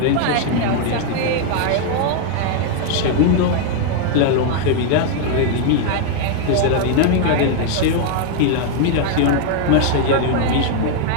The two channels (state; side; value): different; both; correlation 0.00